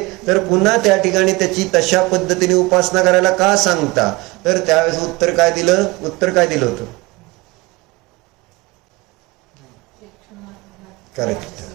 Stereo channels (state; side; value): quieter; left; 23.2 dB